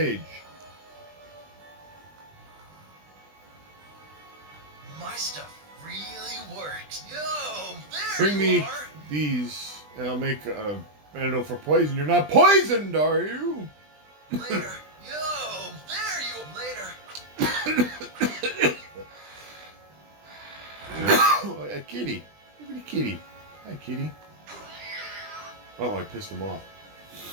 My stuff really works. Yo, there Bring me you are. these, and I'll make an antidote for poison. You're not poisoned, are you? Later. Yo, there you. Later. Oh, a kitty. Look at the kitty. Hi, kitty. Oh, I pissed him off.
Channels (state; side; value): late; left; 20 ms